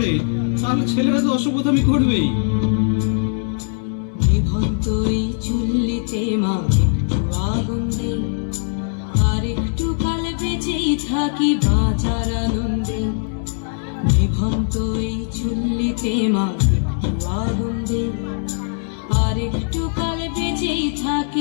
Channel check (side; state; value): right; silent; 65 dB below the other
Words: তাহলে ছেলেরা তো অসভ্যতামি করবেই। নিভন্ত এই চুল্লিতে মা একটু আগুন দে, আর একটু কাল বেঁচেই থাকি বাঁচার আনন্দে। নিভন্ত এই চুল্লিতে মা একটু আগুন দে, আর একটু কাল বেঁচেই